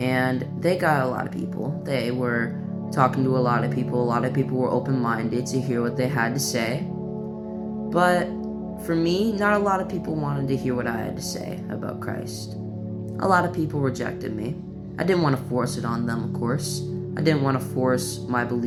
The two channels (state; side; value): identical; both; correlation 1.00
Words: they got a lot of people. They were talking to a lot of people. A lot of people were open-minded to hear what they had to say. But for me, not a lot of people wanted to hear what I had to say about Christ. A lot of people rejected me. I didn't want to force it on them, of course. I didn't want to force my